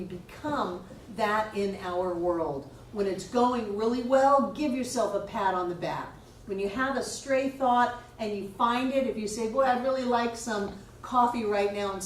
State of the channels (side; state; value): both; identical; correlation 1.00